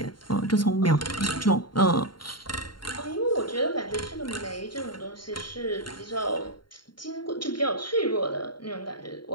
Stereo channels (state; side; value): late; right; 0.72 ms